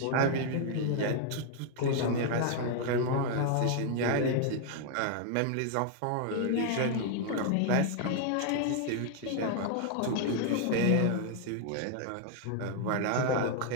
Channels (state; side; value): different; both; correlation 0.00